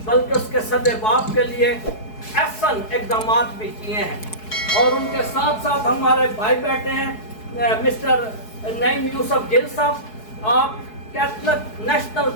بلکہ اس کے صد باب کے لیے احسن اقدامات بھی کیے ہیں. اور ان کے ساتھ ساتھ ہمارے بھائی بیٹھے ہیں مسٹر نعیم یوسف گل صاحب, آپ Catholic national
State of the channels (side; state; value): right; late; 4.7 ms